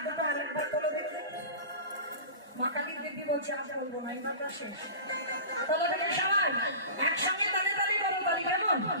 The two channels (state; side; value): inverted; both; correlation -0.34